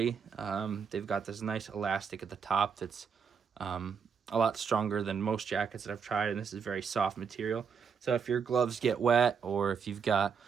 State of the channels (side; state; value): left; quieter; 6.4 dB